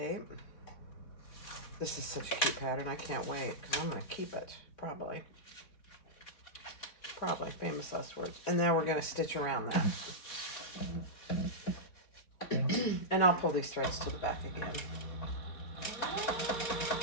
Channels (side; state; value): right; late; 3.8 ms